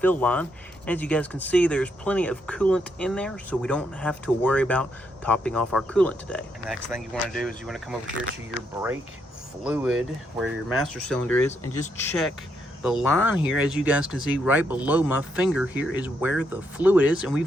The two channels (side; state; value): both; normal; correlation 0.77